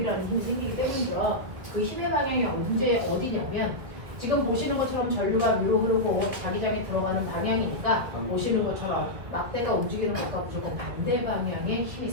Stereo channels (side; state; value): left; late; 2.0 ms